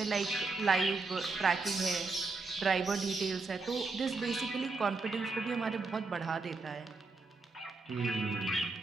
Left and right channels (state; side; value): quieter; left; 3.8 dB